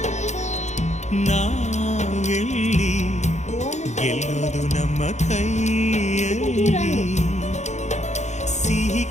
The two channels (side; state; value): right; late; 0.33 ms